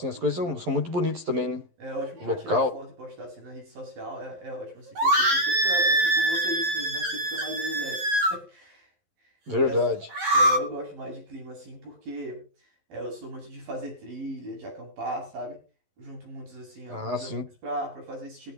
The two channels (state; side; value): late; left; 12 ms